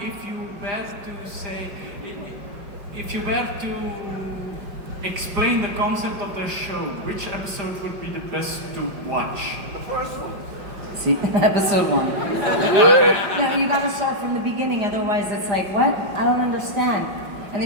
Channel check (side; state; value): left; late; 5.0 ms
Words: if you were to explain the concept of the show, which episode would be the best to watch? The first one. See, episode 1. No, you gotta start from the beginning, otherwise it's like, what? I don't understand. And